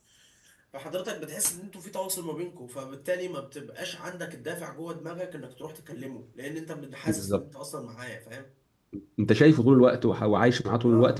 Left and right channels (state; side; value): identical; both; correlation 1.00